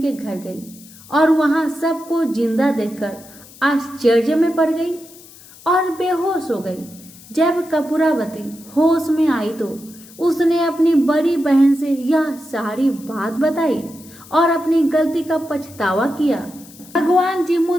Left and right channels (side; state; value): left; noise; hiss, 21 dB below the sound